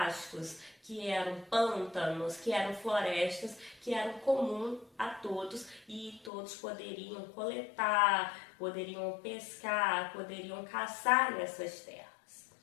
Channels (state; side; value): drops out; right; at 6.3 s